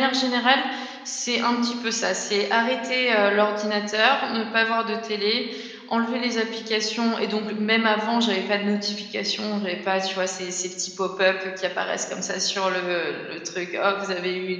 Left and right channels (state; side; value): identical; both; correlation 1.00